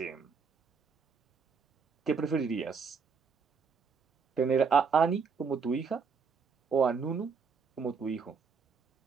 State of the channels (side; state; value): left; quieter; 5.5 dB